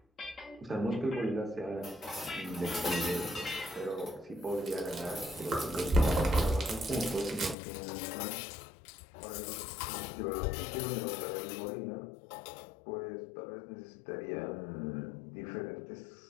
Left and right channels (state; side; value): drops out; right; at 7.6 s